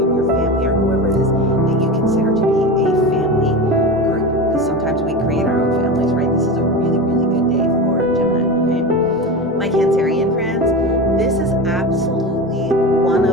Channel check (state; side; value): normal; both; correlation 0.25